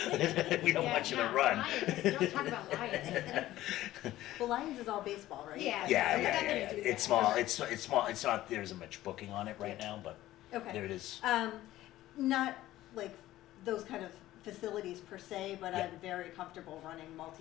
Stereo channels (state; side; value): quieter; right; 15.1 dB